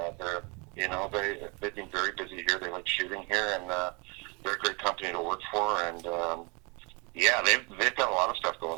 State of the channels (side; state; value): left; quieter; 30.5 dB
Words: they've been very busy here. They like shooting here, and they're a great company to work for. And they've got a lot of stuff